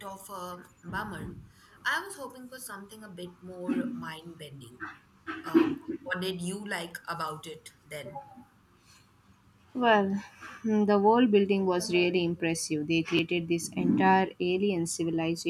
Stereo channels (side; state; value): both; identical; correlation 1.00